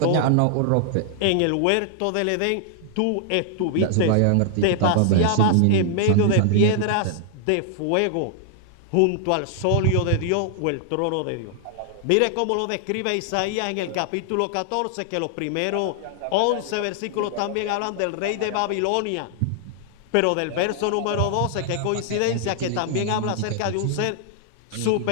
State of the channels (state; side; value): different; both; correlation -0.01